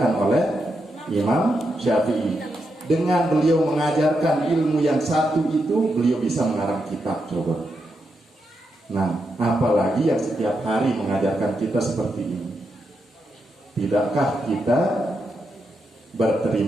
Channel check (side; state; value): both; normal; correlation 0.84